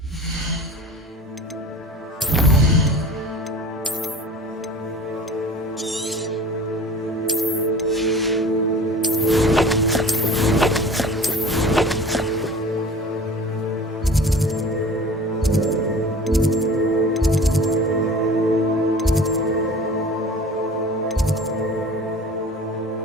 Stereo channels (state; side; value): normal; both; correlation 0.41